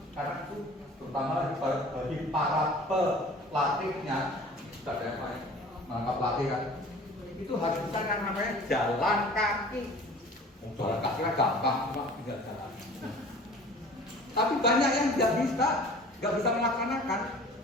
karena itu terutama bagi para pelatihnya, sudah ada yang lain menangkap pelatih kan, itu harus bisa yang namanya jalan kaki. Jalan kaki kan gampang, cuma tinggal jalan. Tapi banyak yang nggak bisa melaksanakan,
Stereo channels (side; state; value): both; normal; correlation 0.45